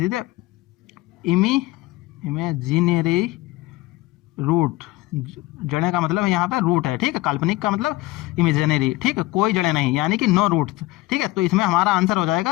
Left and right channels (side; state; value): right; quieter; 18.9 dB